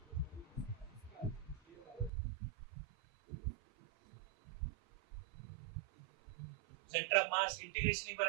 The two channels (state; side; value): drops out; left; at 2.1 s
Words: सेंटर ऑफ मास इंटीग्रेशन एक बार